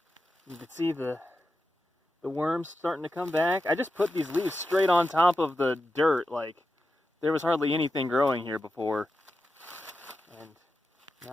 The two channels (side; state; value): both; normal; correlation 0.90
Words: You can see the worms starting to come back. I just put these leaves straight on top of the dirt, like there was hardly anything growing here before. And now